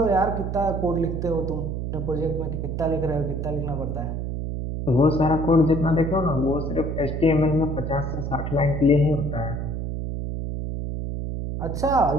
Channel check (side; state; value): right; noise; hum, 3 dB below the sound